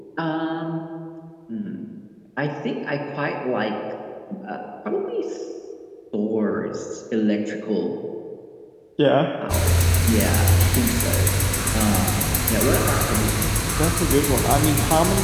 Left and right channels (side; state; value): both; identical; correlation 1.00